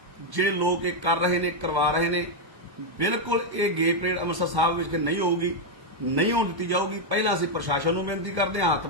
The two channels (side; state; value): left; late; 1.1 ms